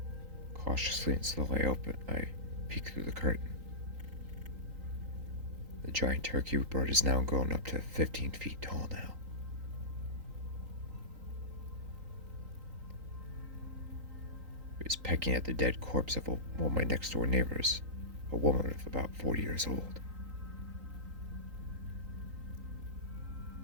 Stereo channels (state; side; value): late; left; 3.8 ms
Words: Cautiously and slowly I peek through the curtain. The giant turkey bird is now grown up to 15 feet tall now. It was pecking at the dead corpse of one of my next door neighbors, a woman of about 40 years old.